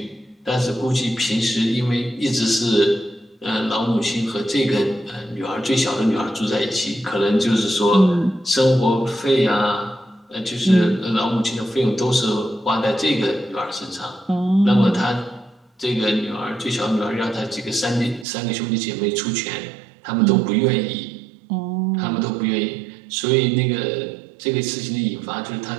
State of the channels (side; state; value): left; drops out; at 18.2 s